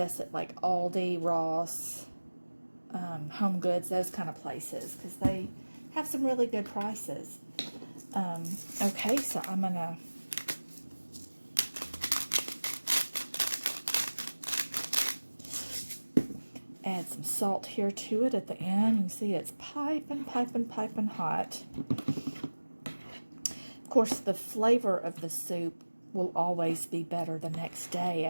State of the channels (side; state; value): both; inverted; correlation -1.00